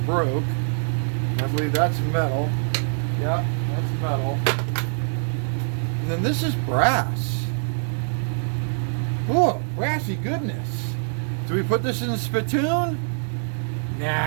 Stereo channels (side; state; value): left; silent; digital silence